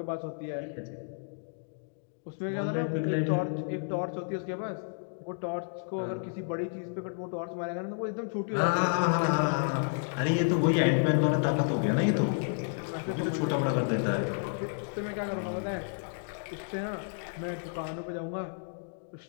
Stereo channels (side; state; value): right; silent; digital silence